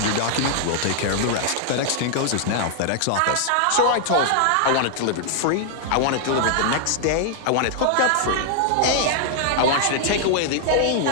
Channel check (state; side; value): different; both; correlation -0.01